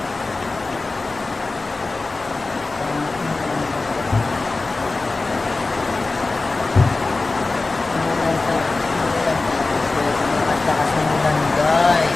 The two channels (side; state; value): right; quieter; 3.5 dB